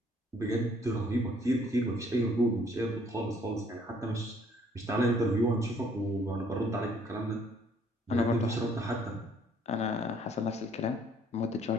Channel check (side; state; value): both; normal; correlation 0.62